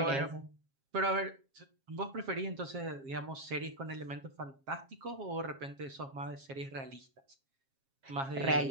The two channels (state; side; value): late; left; 7.4 ms